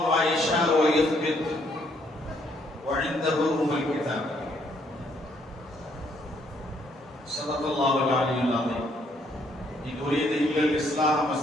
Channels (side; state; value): both; normal; correlation 0.69